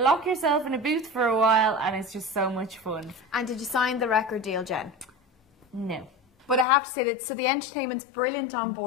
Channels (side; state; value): right; drops out; at 6.7 s